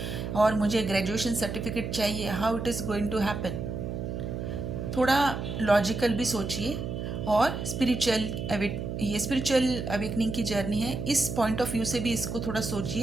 और मुझे ग्रेजुएशन सर्टिफिकेट चाहिए, how it is going to happen. थोड़ा लॉजिकल भी सोचिए, और ये स्पिरिचुअल अवेकनिंग की जर्नी है, इस पॉइंट ऑफ व्यू से भी इसको थोड़ा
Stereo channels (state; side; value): noise; right; hum, 4 dB below the sound